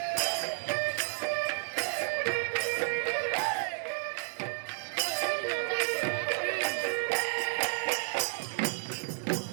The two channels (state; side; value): silent; left; 57 dB below the other